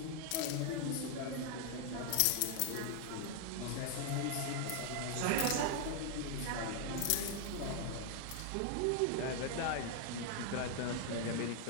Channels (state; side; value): different; both; correlation 0.00